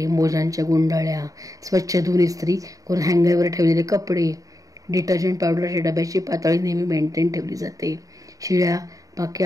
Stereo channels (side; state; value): left; late; 0.17 ms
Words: मोजांच्या गुंडाळ्या स्वच्छ धुवून इस्त्री करून हँगरवर ठेवलेले कपडे, डिटर्जंट पावडरच्या डब्याची पातळी नेहमी मेंटेन ठेवली जाते. शिळ्या